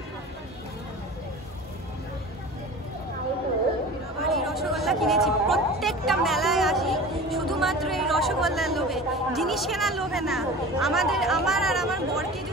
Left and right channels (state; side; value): normal; both; correlation 0.37